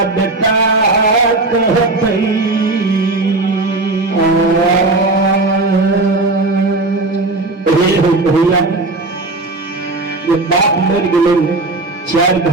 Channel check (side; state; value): left; quieter; 3.1 dB